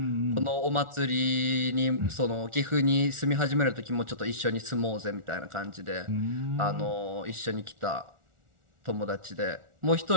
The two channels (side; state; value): left; late; 1.4 ms